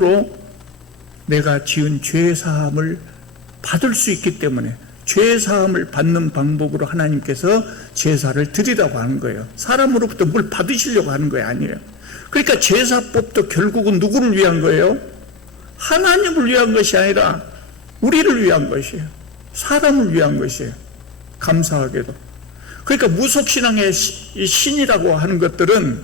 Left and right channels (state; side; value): quieter; right; 4.2 dB